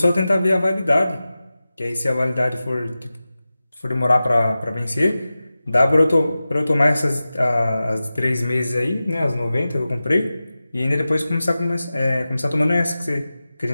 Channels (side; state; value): both; inverted; correlation -0.95